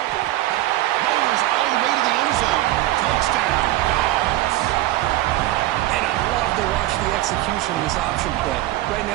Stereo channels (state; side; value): quieter; left; 16.1 dB